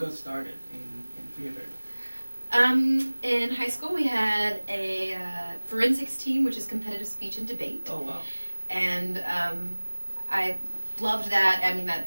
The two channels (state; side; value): inverted; both; correlation -1.00